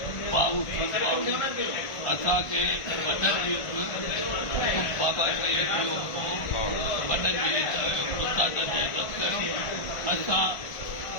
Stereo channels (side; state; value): right; late; 1.5 ms